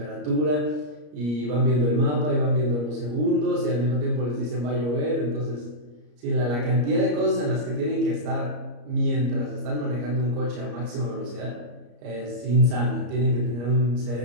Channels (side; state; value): left; late; 34 ms